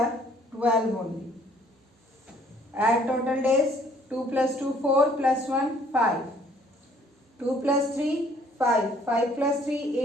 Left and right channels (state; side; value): normal; both; correlation 0.60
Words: 12 only. Add total days. 2 plus 2 4 plus 1 5. 2 plus 3 5. 5 plus 3